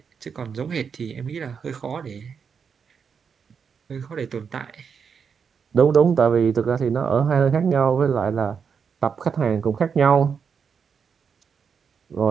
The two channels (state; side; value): quieter; left; 6.4 dB